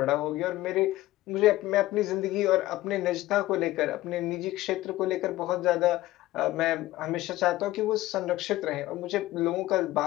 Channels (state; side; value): quieter; right; 16.6 dB